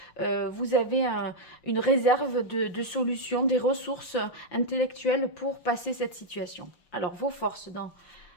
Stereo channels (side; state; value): right; late; 5.7 ms